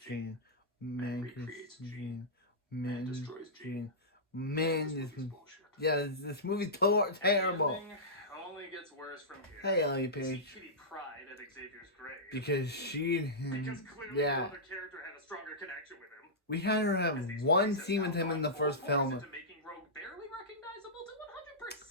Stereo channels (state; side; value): normal; both; correlation -0.14